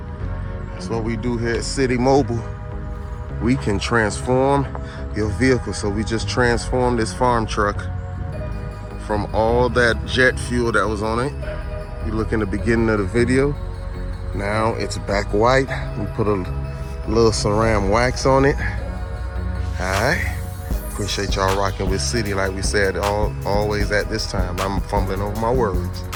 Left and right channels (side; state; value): both; identical; correlation 1.00